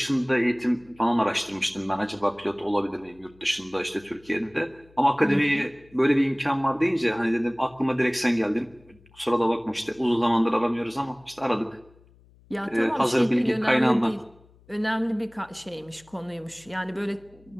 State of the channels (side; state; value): left; noise; hum, 28 dB below the sound